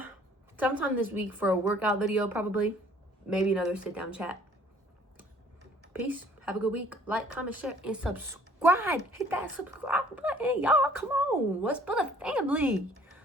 sometime this week for a workout video, probably. Maybe another sit-down chat. Peace. Have a good week. Like, comment, share, and subscribe. Hit that subscribe button, y'all. Come on. Let's build a family.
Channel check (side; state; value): both; normal; correlation 0.56